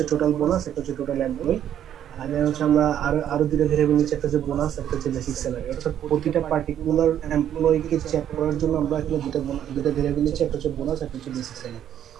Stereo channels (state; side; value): quieter; left; 10.3 dB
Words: টোটাল বোনাস, একটা হচ্ছে টোটাল এমপ্লয়। আর দেন হচ্ছে আমরা আরো দুইটা ভেরিয়েবল নিচ্ছি, একটা হচ্ছে বোনাস, একটা হচ্ছে বেসিক স্যালারি। অর্থাৎ প্রতিটা পার্টিকুলার এমপ্লয়কে চেক করার জন্য আমরা এখানে দুইটা ভেরিয়েবল নিচ্ছি, একটা হচ্ছে বোনাস, একটা হচ্ছে বেসিক স্যালারি।